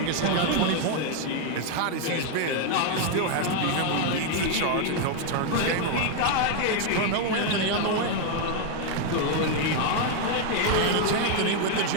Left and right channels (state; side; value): different; both; correlation 0.01